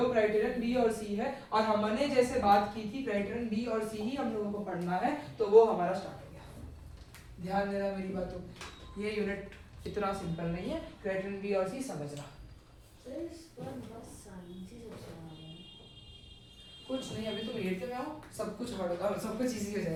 क्राइटेरियन बी और सी है, और हमने जैसे बात की थी क्राइटेरियन बी और सी ही हम लोगों को पढ़ना है, तो वो हमारा स्टार्ट हो गया। ध्यान देना मेरी बातों, ये यूनिट इतना सिंपल नहीं है, क्राइटेरियन बी और सी समझना। कुछ नहीं, अभी तुम 8th में आओ, सब कुछ होगा, सब कुछ इजी हो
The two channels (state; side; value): identical; both; correlation 1.00